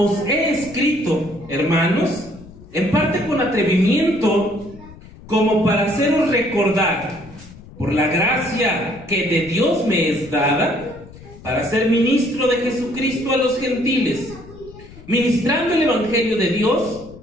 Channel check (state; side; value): noise; left; rumble, 19 dB below the sound